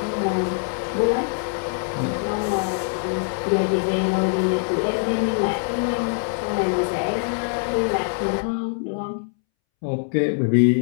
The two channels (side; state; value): right; silent; 63 dB below the other